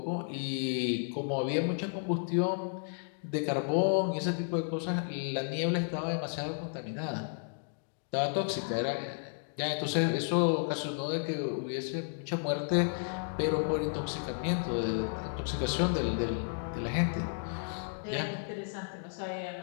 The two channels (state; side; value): silent; right; digital silence